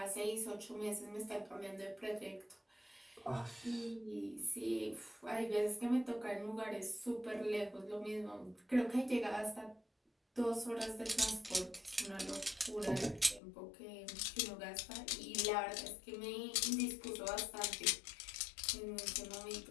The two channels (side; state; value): right; drops out; at 13.4 s